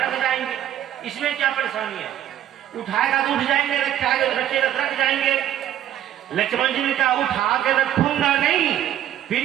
जाएंगे, इसमें क्या परेशानी है, उठाएगा तो उठ जाएंगे, रखेगा तो रख जाएंगे। लक्ष्मण जी ने कहा उठा के रखूंगा नहीं,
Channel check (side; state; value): left; quieter; 11.4 dB